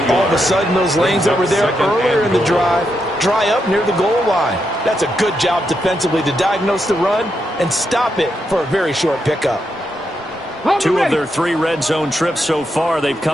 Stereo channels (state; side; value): normal; both; correlation 0.82